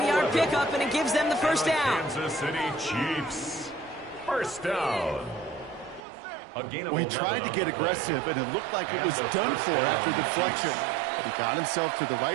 pickup, and it gives them the 1st down. Kansas City Chiefs. 1st down. Well, he tried to get aggressive, and it looked like it was done for after the deflection. But he got himself to the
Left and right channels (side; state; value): left; drops out; at 6.1 s